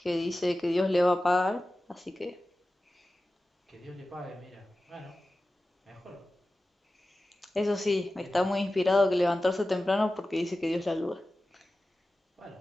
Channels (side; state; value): both; normal; correlation 0.95